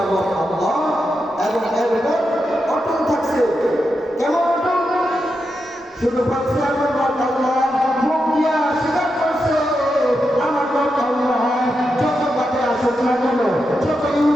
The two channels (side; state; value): both; normal; correlation 0.86